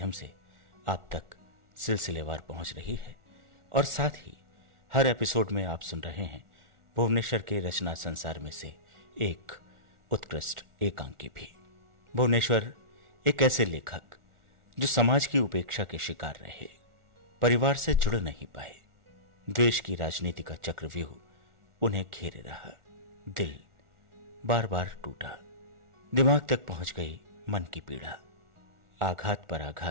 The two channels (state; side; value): late; left; 1.4 ms